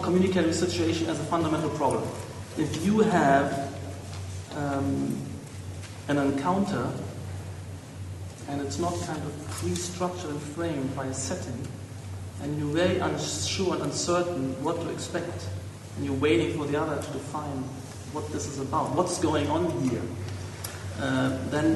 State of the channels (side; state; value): both; identical; correlation 1.00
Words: communicatory situation as a fundamental problem. If you have an encounter and it's not kind of pre-structured and framed by a setting, and you're very unsure and uncertain what to expect, and you're waiting for the other to define what this is about, what's going on here,